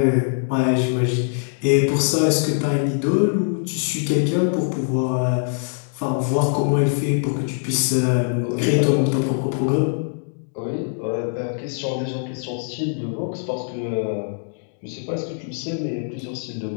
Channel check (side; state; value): right; silent; digital silence